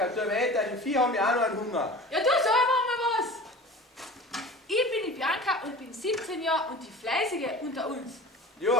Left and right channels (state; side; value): normal; both; correlation 0.38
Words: tu weiter, die Vieh haben ja auch noch einen Hunger. Ja, du sag mal was. Ich bin die Bianca und bin 17 Jahre und die Fleißige unter uns.